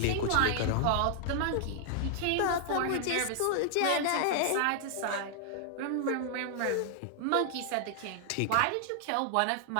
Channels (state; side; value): different; both; correlation -0.01